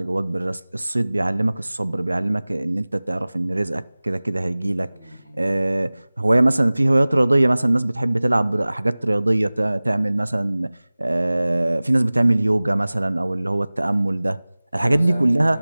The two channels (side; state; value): both; inverted; correlation -0.99